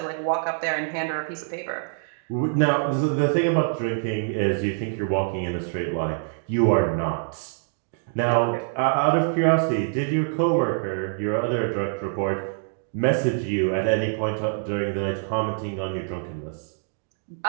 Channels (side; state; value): left; silent; digital silence